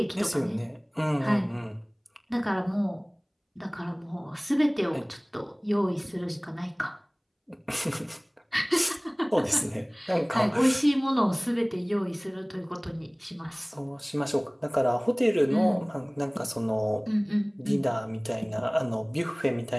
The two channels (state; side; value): identical; both; correlation 1.00